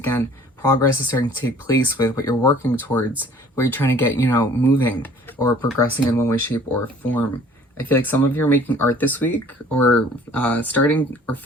progress is starting to take place with what you're working towards, what you're trying to get, you know, moving or progressing in one way, shape, or form. I feel like some of you are making art this week, or starting or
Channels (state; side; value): normal; both; correlation 0.52